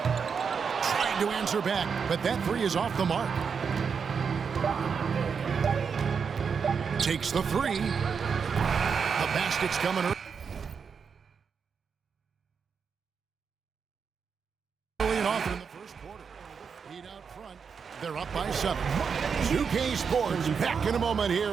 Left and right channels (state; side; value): quieter; left; 6.1 dB